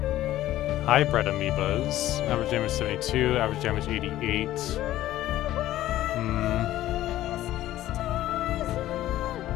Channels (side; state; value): right; quieter; 14.2 dB